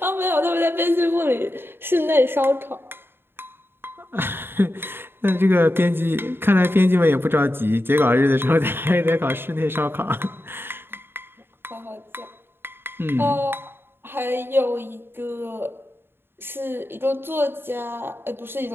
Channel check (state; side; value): late; left; 0.11 ms